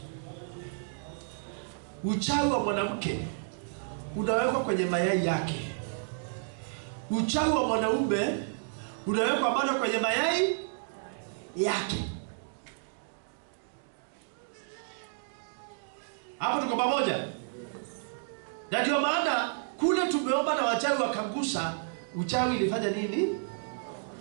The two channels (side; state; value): left; silent; digital silence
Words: Uchawi wa mwanamke unawekwa kwenye mayai yake. Uchawi wa mwanaume unawekwa bado kwenye mayai yake. Hapo tuko pamoja? Na ndio maana kule tumeomba na wachawi wakangusa, uchawi ilifanya nini?